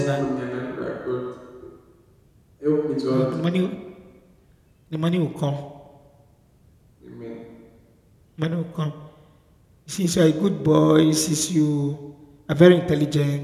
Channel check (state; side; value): identical; both; correlation 1.00